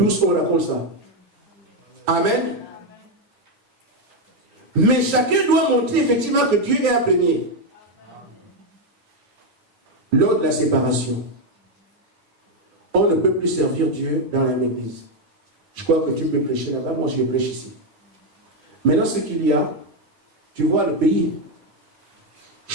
on raconte ça. Amen. Mais chacun doit montrer effectivement que Dieu est un premier. Lors de la séparation, on ne peut plus servir Dieu dans la même église. Je crois que tu peux prêcher là-bas, moi je prêche ici. Maintenant ce qu'il y a, tu vois le pays.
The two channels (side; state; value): left; late; 9.5 ms